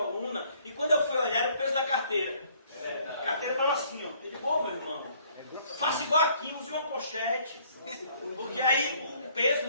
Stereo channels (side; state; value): both; inverted; correlation -0.61